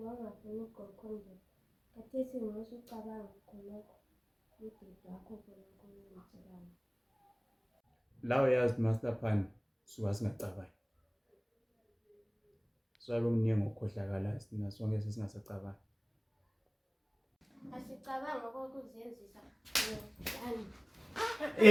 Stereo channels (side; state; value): both; identical; correlation 1.00